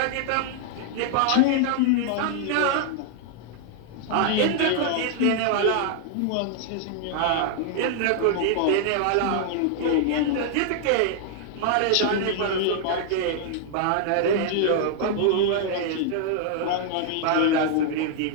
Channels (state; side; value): different; both; correlation 0.00